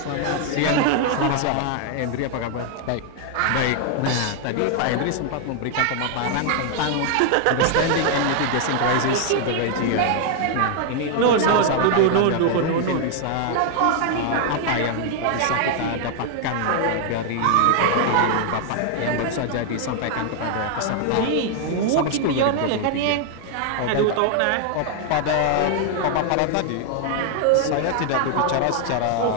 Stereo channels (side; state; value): both; different; correlation 0.00